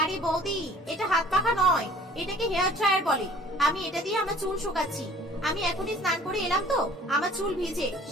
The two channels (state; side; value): normal; both; correlation 0.51